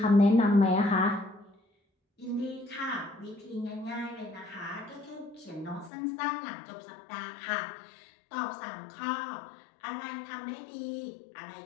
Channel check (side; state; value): right; drops out; at 5.9 s